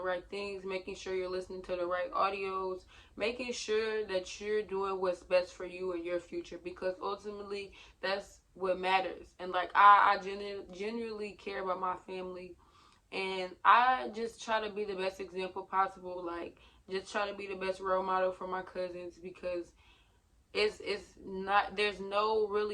right things, making sure you're listening to the right audios, making sure that you're doing what's best for you and your future, because ultimately that's what matters. And like, I genuinely care about my family, and I just try to be the best example possible. Like, just try to be the best role model for my cousins, because it's not, there's no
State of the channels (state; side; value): identical; both; correlation 1.00